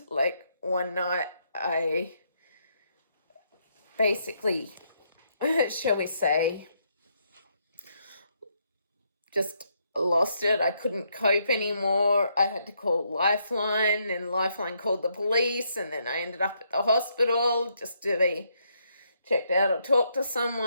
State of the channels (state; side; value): inverted; both; correlation -0.75